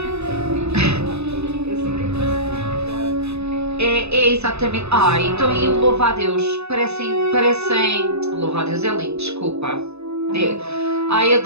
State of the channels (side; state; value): left; late; 0.80 ms